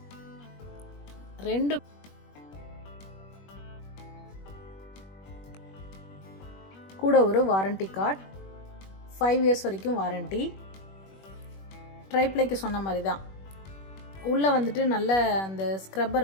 2 கூட ஒரு வாரண்டி கார்டு, 5 years வரைக்கும் வாரண்டி. ட்ரைப்ளைக்கு சொன்ன மாதிரி தான். உள்ளே வந்துட்டு நல்ல அந்த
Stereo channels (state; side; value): late; right; 21 ms